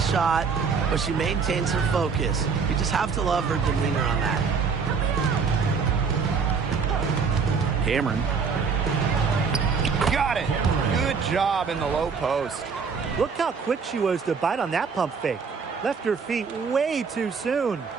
but she maintains her focus. You just have to love her demeanor on that. Cameron. Got it. Good job in the low post. Look how quick she was to bite on that pump fake. Left her feet way too soon.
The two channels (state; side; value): quieter; left; 5.6 dB